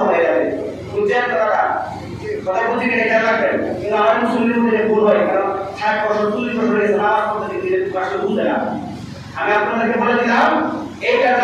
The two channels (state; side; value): identical; both; correlation 1.00